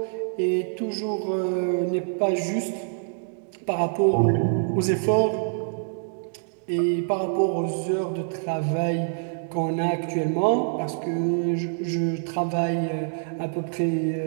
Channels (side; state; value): left; silent; digital silence